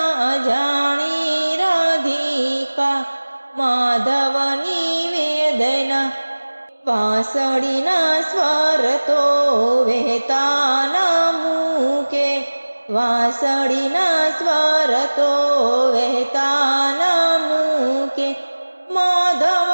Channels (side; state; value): both; inverted; correlation -1.00